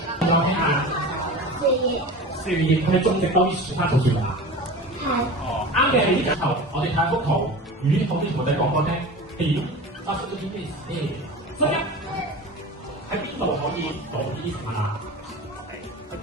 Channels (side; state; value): both; normal; correlation 0.33